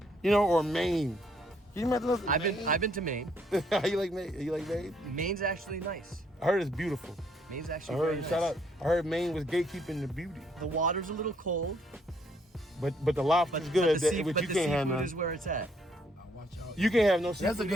You know, or Maine. Can you imagine those? I've been to Maine. You like Maine? You like Maine? Maine's actually nice. I heard it's beautiful. Maine's I actually heard very shout nice. out. I heard Maine was gatekeeping the beauty. The water's a little cold, But the lobster's but good, the, sea, which but you the can't have seafood none. is where it's at. Watch out. You can't have no seafood. That's a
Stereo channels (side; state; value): both; normal; correlation 0.68